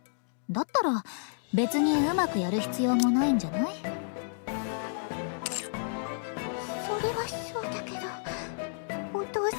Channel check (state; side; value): silent; right; digital silence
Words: だったら別にうまくやる必要もないんじゃない？それはそうだけど、お父